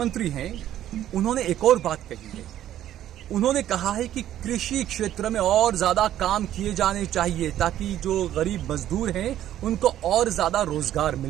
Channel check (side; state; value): left; quieter; 12.1 dB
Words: हैं, उन्होंने एक और बात कही है। उन्होंने कहा है कि कृषि क्षेत्र में और ज्यादा काम किए जाने चाहिए ताकि जो गरीब मजदूर हैं उनको और ज्यादा रोजगार